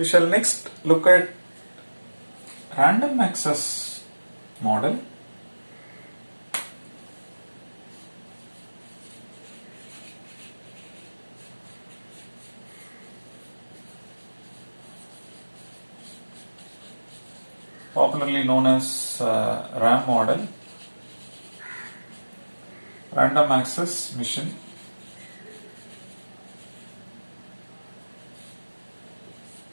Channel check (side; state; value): both; inverted; correlation -1.00